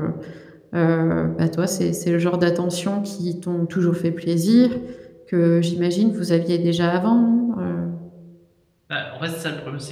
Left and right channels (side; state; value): both; identical; correlation 1.00